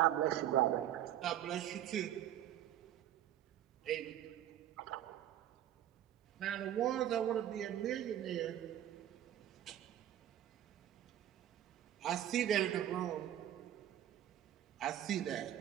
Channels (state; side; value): quieter; left; 11.6 dB